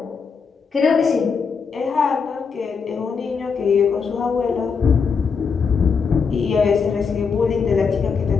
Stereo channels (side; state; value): right; quieter; 5.6 dB